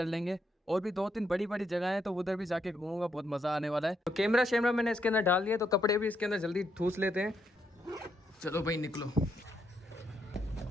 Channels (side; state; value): both; normal; correlation 0.78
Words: लेंगे और भी 2-3 बड़ी बड़ी जगह है, तो उधर भी जाके घूमूंगा, बहुत मज़ा आने वाला है। तो कैमरा शैमरा मैंने इसके अंदर डाल दिया, तो कपड़े भी इसके अंदर जल्दी ठूस लेते हैं। चलो भाई निकलो।